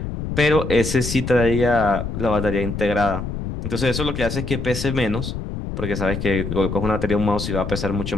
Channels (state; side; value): noise; left; rumble, 5 dB below the sound